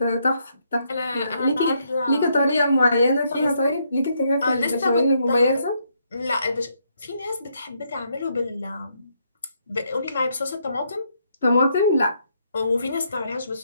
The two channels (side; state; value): both; inverted; correlation -0.75